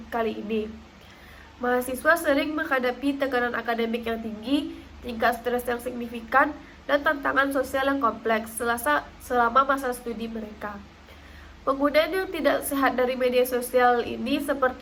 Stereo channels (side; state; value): both; identical; correlation 1.00